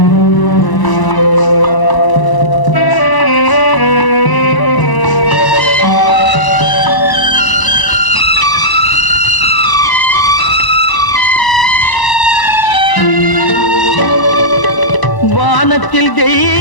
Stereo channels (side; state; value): right; late; 1.0 ms